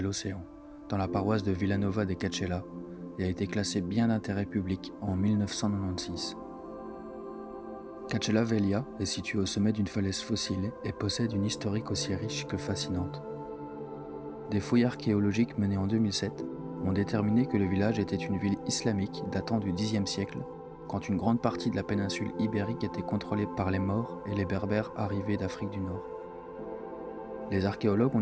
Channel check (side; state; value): both; identical; correlation 1.00